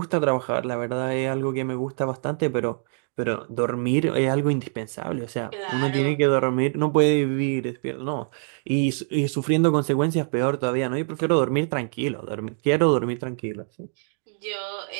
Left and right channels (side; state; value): left; silent; 62 dB below the other